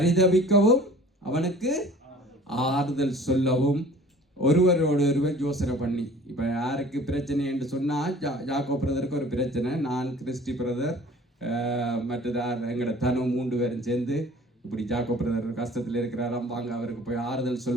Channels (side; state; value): both; normal; correlation 0.48